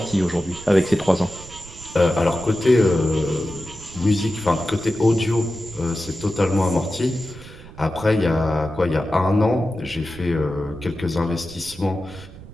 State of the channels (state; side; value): noise; right; rumble, 18 dB below the sound